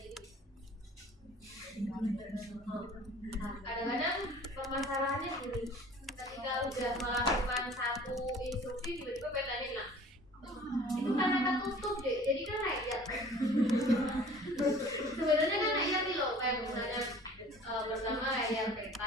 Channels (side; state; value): both; normal; correlation 0.48